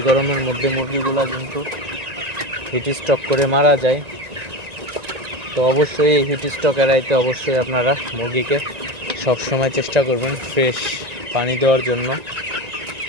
গরমের মধ্যে মুরগিগুলা কিন্তু হিট স্ট্রোক করে মারা যায়। তো অবশ্যই এই হিট স্ট্রোক এড়াইতে অবশ্যই আপনারা মুরগিকে সবসময় চেষ্টা করবেন ফ্রেশ পানি দেওয়ার জন্য।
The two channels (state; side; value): late; left; 1.9 ms